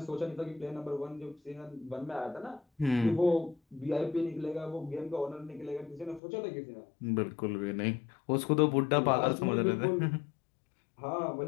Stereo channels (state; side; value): drops out; right; at 6.2 s